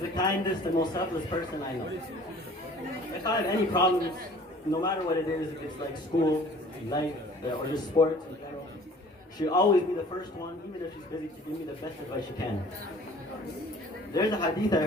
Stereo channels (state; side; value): normal; both; correlation 0.50